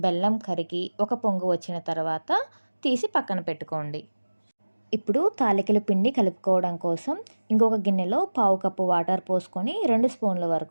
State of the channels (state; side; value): inverted; both; correlation -1.00